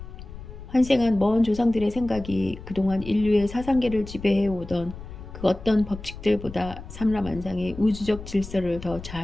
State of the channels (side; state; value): left; noise; rumble, 13 dB below the sound